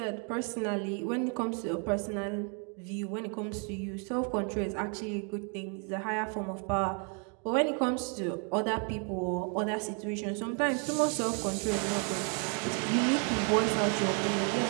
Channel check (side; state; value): left; quieter; 39.0 dB